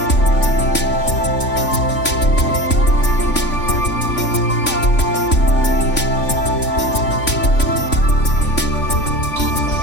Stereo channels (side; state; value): right; late; 3.5 ms